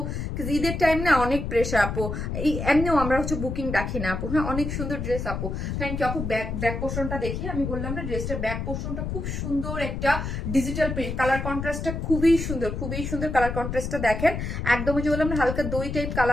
ঈদের টাইম না অনেক প্রেশার আপু, এই এমনিও আমরা হচ্ছে বুকিং রাখি না আপু। হ্যাঁ, অনেক সুন্দর ড্রেস আপু, থ্যাংক ইউ আপু। ব্যাক পোর্শনটা দেখি, আমি বললাম না ড্রেসটার ব্যাক পোর্শনটা খুব সুন্দর একটা ডিজিটাল প্রিন্ট, কালার কন্ট্রাস্টটা খুবই সুন্দর, খুবই সুন্দর কালার কন্ট্রাস্টটা দেখেন। একদম যে বললাম না হালকা দই টাইপ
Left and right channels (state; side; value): noise; left; rumble, 4 dB below the sound